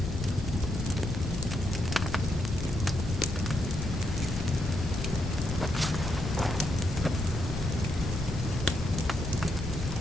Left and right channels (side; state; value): left; noise; rumble, 4 dB below the sound